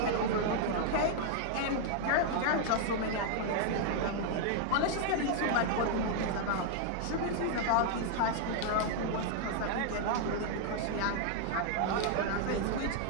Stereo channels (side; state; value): both; different; correlation 0.00